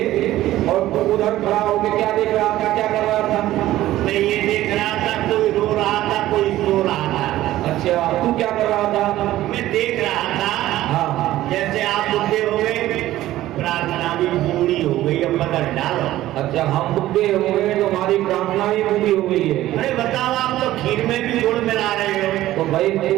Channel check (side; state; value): left; quieter; 14.9 dB